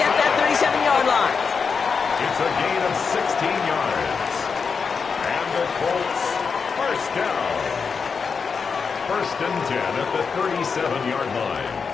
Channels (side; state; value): right; quieter; 5.5 dB